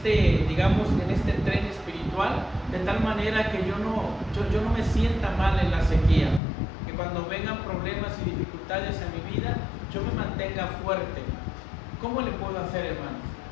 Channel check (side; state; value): right; drops out; at 6.4 s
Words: digamos, en este tren espiritual, de tal manera que yo no me sienta mal en la sequía? Que cuando vengan problemas y dificultades en mi vida, yo me mantenga fuerte. ¿Cómo le puedo hacer, hermanos?